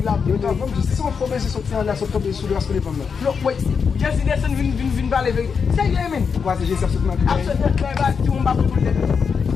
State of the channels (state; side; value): quieter; right; 6.0 dB